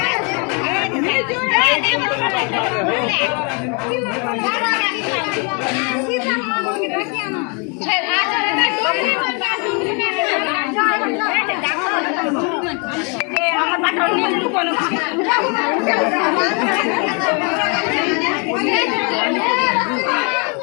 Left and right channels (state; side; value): quieter; right; 34.9 dB